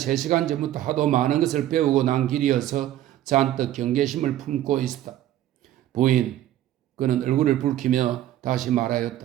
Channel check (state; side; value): quieter; left; 12.9 dB